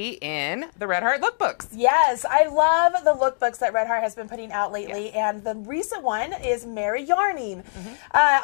in the Red Heart lookbooks. Yes, I love the lookbooks that Red Heart has been putting out lately, and the recent one is Merry Yarning.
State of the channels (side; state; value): right; silent; digital silence